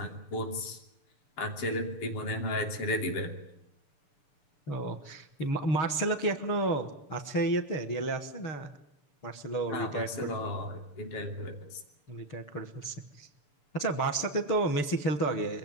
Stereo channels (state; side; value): late; right; 6.8 ms